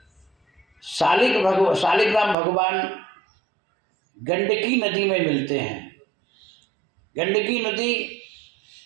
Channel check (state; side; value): drops out; left; at 2.4 s